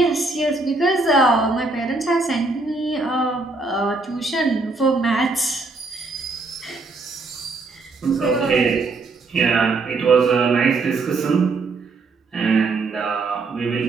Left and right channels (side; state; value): left; quieter; 3.6 dB